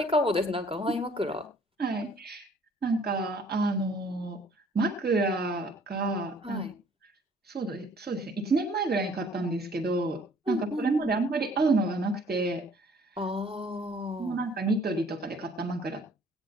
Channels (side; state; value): both; normal; correlation 0.57